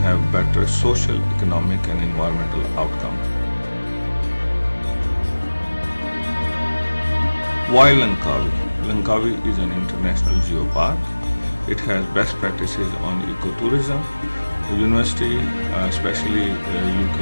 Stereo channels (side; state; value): both; inverted; correlation -1.00